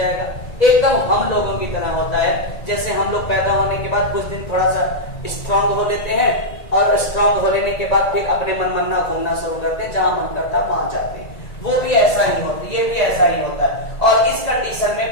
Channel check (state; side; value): late; right; 1.9 ms